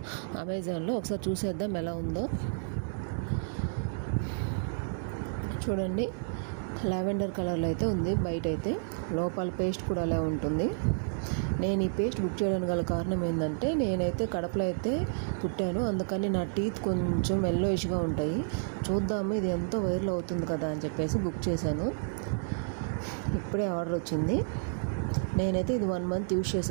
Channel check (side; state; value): left; silent; 57 dB below the other